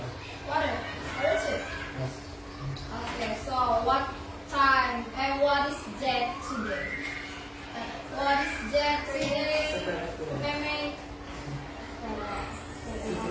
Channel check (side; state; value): both; identical; correlation 1.00